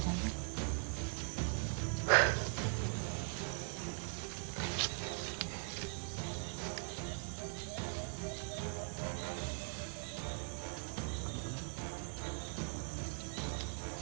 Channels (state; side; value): quieter; left; 38.8 dB